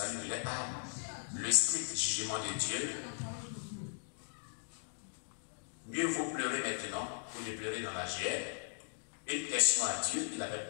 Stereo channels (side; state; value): right; silent; digital silence